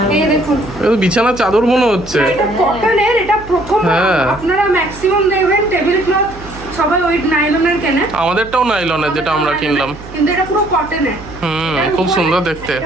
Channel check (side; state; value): right; noise; hum, 16 dB below the sound